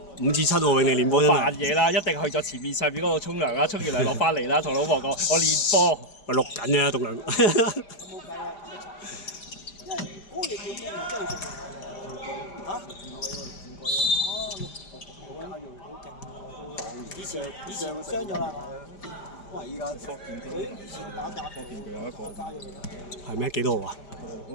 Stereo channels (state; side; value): late; right; 5.0 ms